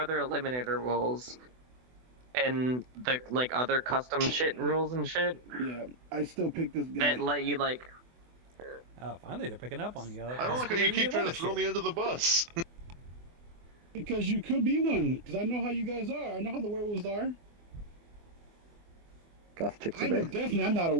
eliminator roles and the like other custom shit rules and shit Yeah. I still pick this guy. that let you like. Oh, finally they're picking up on you. I don't like how you keep trying to throw me under the bus. Because you could be one. Because I know how you guys are. I know how the werewolves are. Goth chicks I are know bad. definitely I'm not a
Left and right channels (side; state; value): left; late; 24 ms